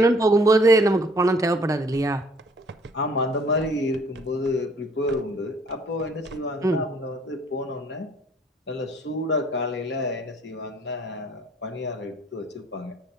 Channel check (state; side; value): normal; both; correlation 0.59